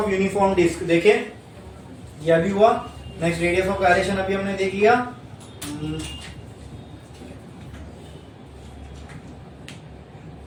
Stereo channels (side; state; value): both; identical; correlation 1.00